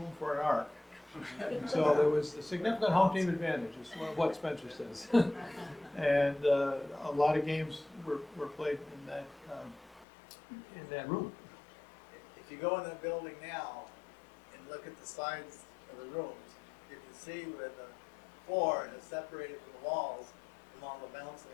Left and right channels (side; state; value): right; drops out; at 10.1 s